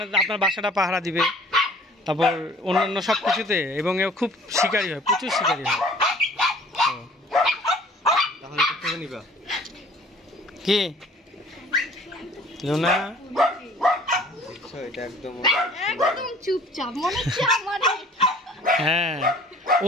আপনার বাসাটা পাহারা দিবে, তারপর অন্যান্য সব কিছুতে, এবং এ খুব শিকারী হয়, প্রচুর শিকারী হয়। কি লুনা একদম চুপচাপ মনে হচ্ছে আমার। হ্যাঁ,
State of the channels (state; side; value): normal; both; correlation 0.51